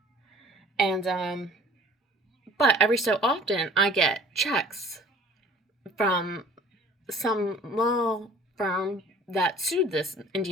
And, but every so often, I get checks from some law firm that sued this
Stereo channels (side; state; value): both; normal; correlation 0.50